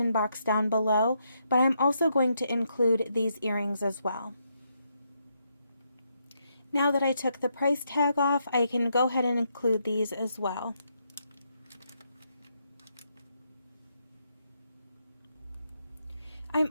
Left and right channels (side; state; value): both; inverted; correlation -0.79